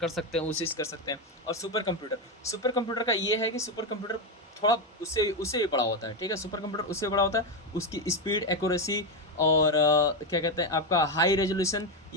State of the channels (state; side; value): normal; both; correlation 0.10